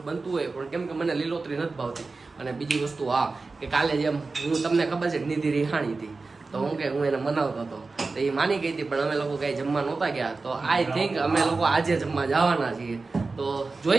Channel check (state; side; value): quieter; left; 3.9 dB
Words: બનતું હોય, પણ કેમ કે મને લીલોતરી નથી ભાવતી. અને બીજી વસ્તુ કે કાલે જેમ હું તમને ખબર છે નિધિ રિહાણી હતી તો હું એને મનાવતો હતો તો એ માની ગઈ હતી, પણ અમે લોકો કઈ જમવા નહોતા ગયા. તો આઈ થિંક અમે લોકો આજે જમવા જવાના છીએ. તો